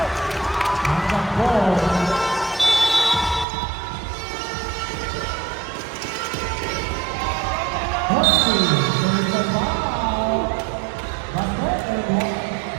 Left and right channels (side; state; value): left; drops out; at 3.5 s